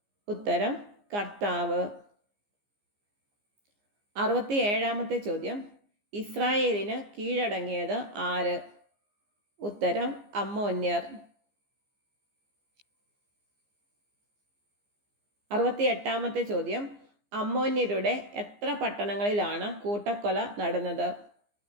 ഉത്തരം കർത്താവ്. 67-ാമത്തെ ചോദ്യം, ഇസ്രായേലിന് കീഴടങ്ങിയത് ആര്? ഉത്തരം അമ്മോന്യർ. 68-ാമത്തെ ചോദ്യം, അമ്മോന്യരുടെ എത്ര പട്ടണങ്ങളിലാണ് കൂട്ടക്കൊല നടന്നത്?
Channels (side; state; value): left; late; 15 ms